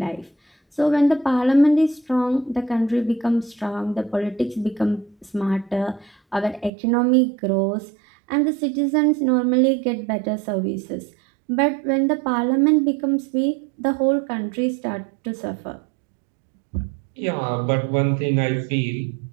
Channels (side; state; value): left; drops out; at 6.7 s